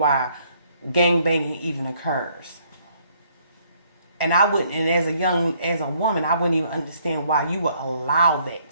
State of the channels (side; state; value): both; inverted; correlation -0.65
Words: gangbanging even occurs. And I wouldn't, and as a woman, I wouldn't even understand why you would allow that